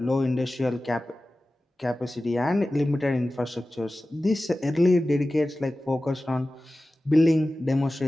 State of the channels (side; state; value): both; normal; correlation 0.96